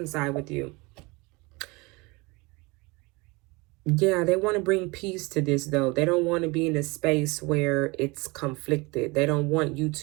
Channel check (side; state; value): left; quieter; 25.5 dB